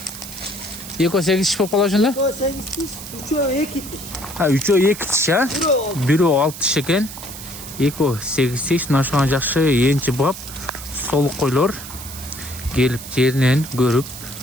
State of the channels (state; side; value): noise; right; hiss, 12 dB below the sound